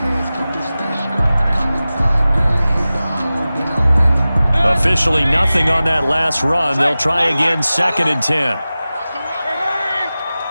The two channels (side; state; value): both; inverted; correlation -0.96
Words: Officially nothing on that last run. They'll try again, 2nd and 10.